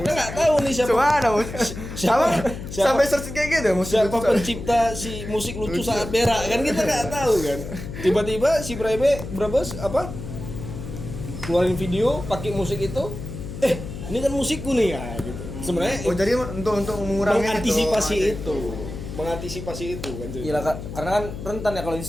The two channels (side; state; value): left; noise; hum, 9 dB below the sound